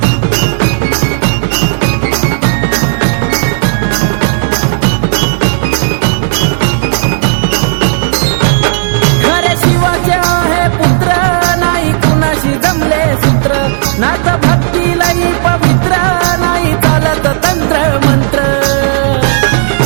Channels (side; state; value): left; silent; digital silence